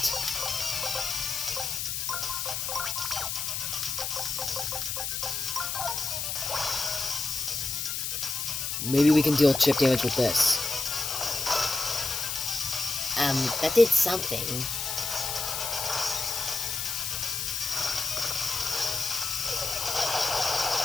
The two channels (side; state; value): left; noise; hiss, 2 dB below the sound